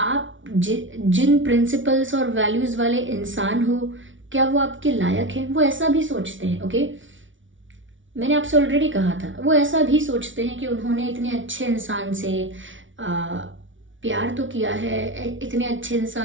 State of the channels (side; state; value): left; late; 0.56 ms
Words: जिन प्रिंसिपल्स और वैल्यूज़ वाले इंसान हो, क्या वो आपके लायक हैं, वो ऐसा भी सोचते हैं। ओके, मैंने आपसे ऑलरेडी कहा था, वो ऐसा भी सोचते हैं कि उन्होंने इतने अच्छे इंसान से प्यार तो किया है, इतने अच्छे